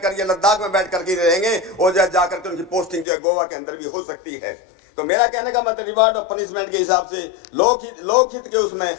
करके, लद्दाख में बैठ करके रहेंगे और जाकर के उनकी पोस्टिंग जो है गोवा के अंदर भी हो सकती है। तो मेरा कहने का मतलब रिवार्ड और पनिशमेंट के हिसाब से लोकहित के उसमें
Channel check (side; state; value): right; drops out; at 3.1 s